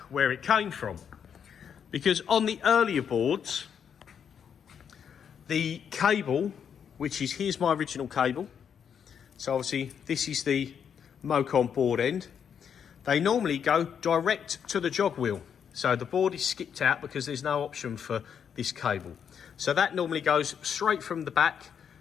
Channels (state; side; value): quieter; right; 7.7 dB